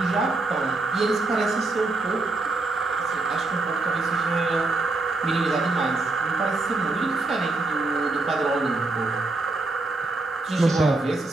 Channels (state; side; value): quieter; left; 3.2 dB